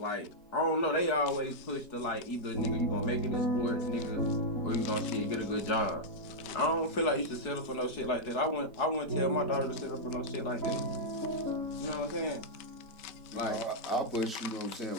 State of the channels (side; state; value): right; late; 4.7 ms